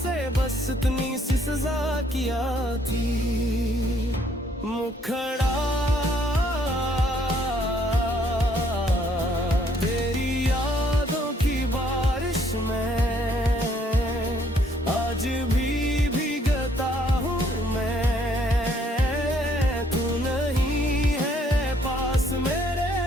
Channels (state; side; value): normal; both; correlation 0.66